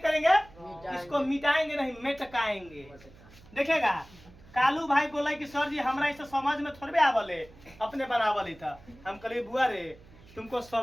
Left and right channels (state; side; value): noise; right; hum, 23 dB below the sound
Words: इसको मिटाएंगे नहीं मेटकाएंगे। देखेगा, कालू भाई बोला कि सर जी हमरा इसे समझ में थोड़े आवले, अपने बनावल था। हम कहे बुआ रे तुमको